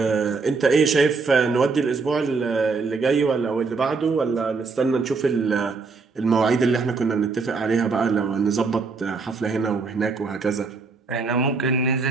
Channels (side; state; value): left; quieter; 4.5 dB